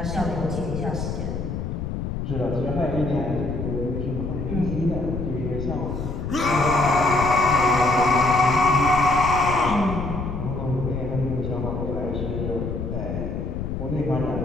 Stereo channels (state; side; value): noise; left; rumble, 4 dB below the sound